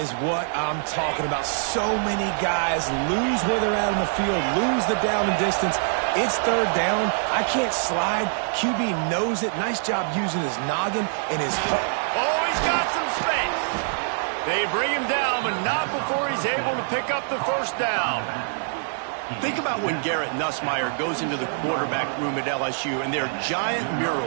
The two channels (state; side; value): silent; left; 60 dB below the other